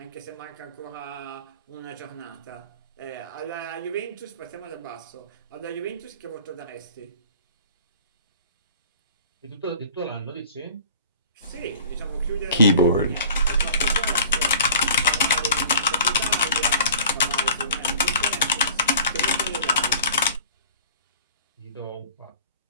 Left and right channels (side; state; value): both; inverted; correlation -0.45